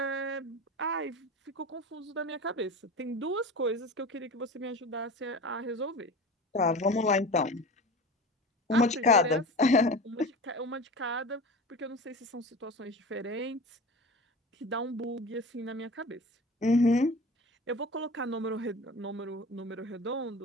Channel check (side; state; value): both; normal; correlation 0.34